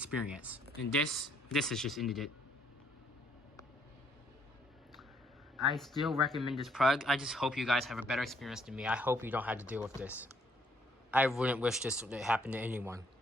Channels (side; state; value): both; normal; correlation 0.68